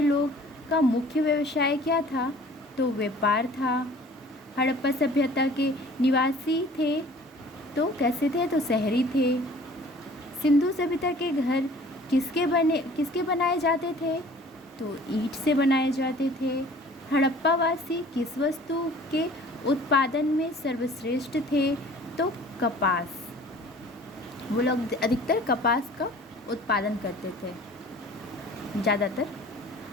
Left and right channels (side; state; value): both; normal; correlation 0.49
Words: लोग का मुख्य व्यवसाय क्या था? तो व्यापार था। हड़प्पा सभ्यता के निवासी थे तो कैसे थे? तो शहरी थे। सिंधु सभ्यता के घर किसके बनाए जाते थे? तो ईंट से बनाए जाते थे। हड़प्पा वासी किस वस्तु के उत्पादन में सर्वश्रेष्ठ थे? तो कपास। वो लोग अधिकतर कपास का उत्पादन करते थे ज़्यादातर।